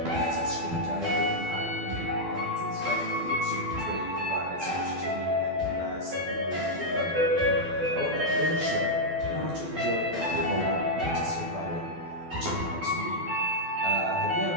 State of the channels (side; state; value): left; late; 12 ms